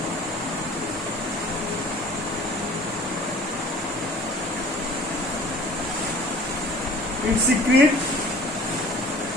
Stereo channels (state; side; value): normal; both; correlation 0.47